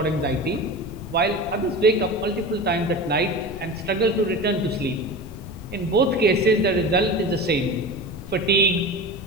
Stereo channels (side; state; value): left; noise; rumble, 13 dB below the sound